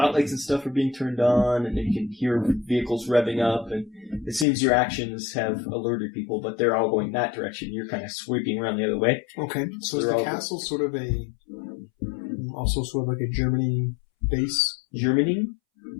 and stuff are being turned on, and you can hear vehicles revving up. And it seems your actions have alerted people, but they're all going that direction. You're kind of sweeping around the other way. Okay, so is the castle sort of also sort of like a Germany base? Germany?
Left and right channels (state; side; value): drops out; right; at 4.5 s